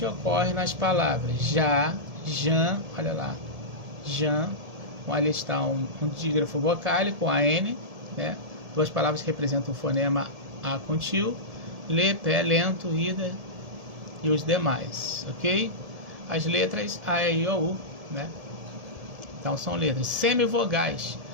ocorre nas palavras já, jan, olha lá, jan, ali está um dígrafo vocálico, AN, né? Duas palavras que representam o fonema A com tio, lê, pé, lento, ida e os demais, ok? As letras A, E, I, O, U, né? Então são letras. Semivogais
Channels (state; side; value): late; left; 1.7 ms